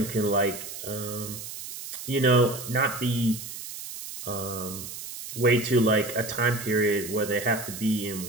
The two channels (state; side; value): noise; right; hiss, 10 dB below the sound